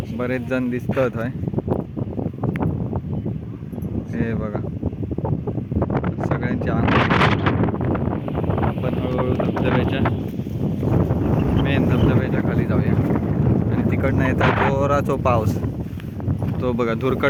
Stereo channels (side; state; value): both; identical; correlation 1.00